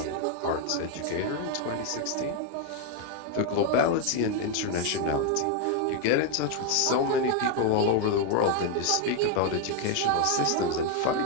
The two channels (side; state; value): both; different; correlation 0.01